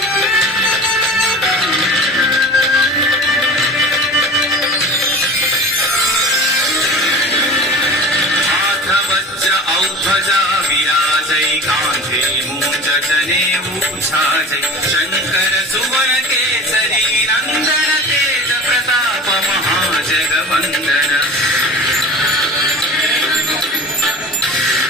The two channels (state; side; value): normal; both; correlation 0.37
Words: शंकर सुवन केसरी नंदन तेज प्रताप महाजगवंदन